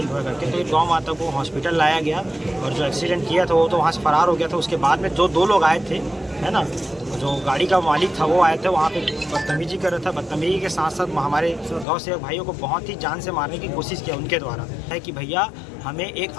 हुआ करके। तो गौ माता को हॉस्पिटल लाया गया और जो एक्सीडेंट किया था वो तो वहाँ से फरार हो गया था। उसके बाद में जो 2 लोग आए थे, है ना, जो गाड़ी का मालिक था वो आए थे, वहाँ पे बदतमीजी कर रहा था। बदतमीजी के साथ साथ हमारे गाँव से भाइयों को बहुत ही जान से मारने की कोशिश किया उनके द्वारा। है कि भैया हमें एक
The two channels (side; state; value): right; drops out; at 11.9 s